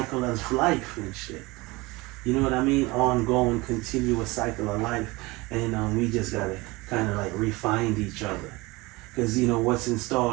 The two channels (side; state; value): left; quieter; 22.8 dB